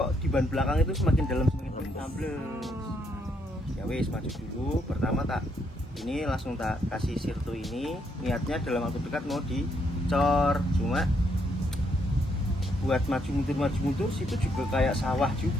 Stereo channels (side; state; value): both; normal; correlation 0.74